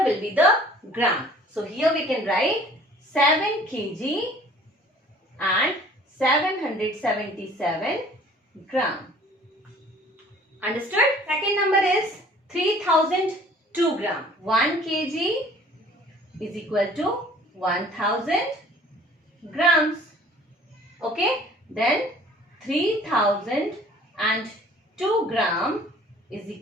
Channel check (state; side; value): normal; both; correlation 0.52